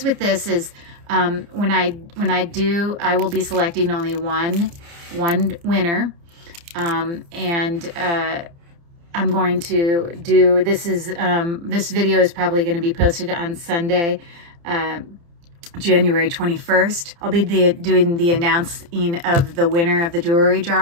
with this is when I do, I will be selecting only one winner, and I'm going to do, this video is probably going to be posted on Sunday, January 21st. I'll be doing the announcing of the winner of the jewelry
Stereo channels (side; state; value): left; late; 29 ms